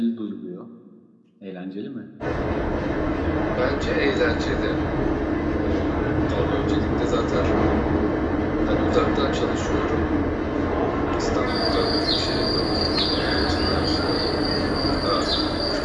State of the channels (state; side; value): identical; both; correlation 1.00